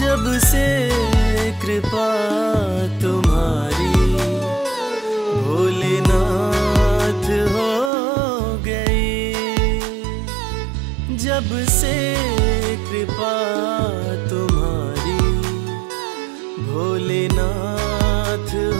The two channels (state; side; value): drops out; left; at 7.9 s